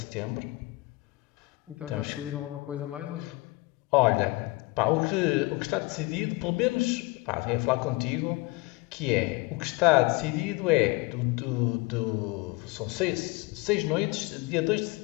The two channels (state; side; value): quieter; right; 24.1 dB